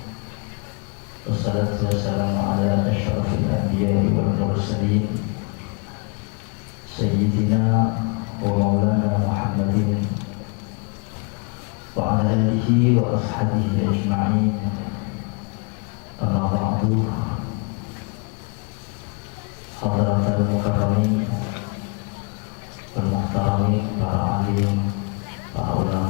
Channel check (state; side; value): quieter; right; 33.7 dB